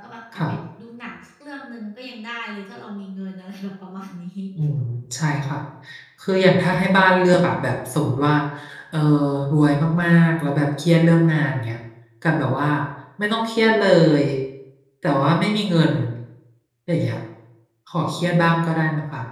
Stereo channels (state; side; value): identical; both; correlation 1.00